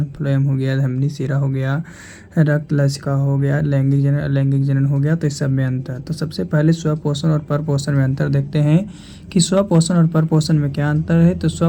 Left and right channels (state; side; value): identical; both; correlation 1.00